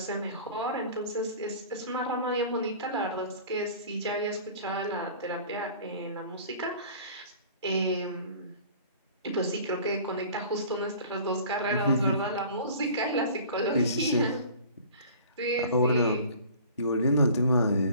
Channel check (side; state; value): both; inverted; correlation -0.45